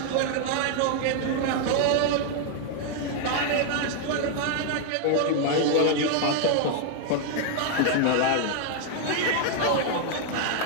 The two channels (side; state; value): both; different; correlation 0.00